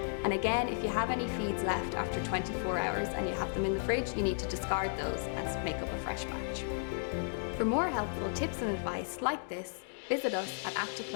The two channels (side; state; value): right; silent; digital silence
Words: And again, if you have any feeds left after 24 hours and you have them in the fridge, you need to discard those and make up a fresh batch. For more helpful tips and advice like this, visit us at